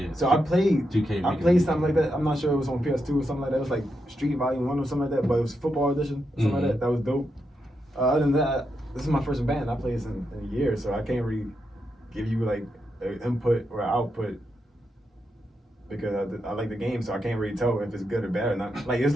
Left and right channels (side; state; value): both; normal; correlation 0.84